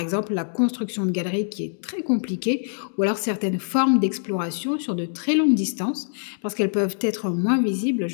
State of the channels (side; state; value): right; silent; digital silence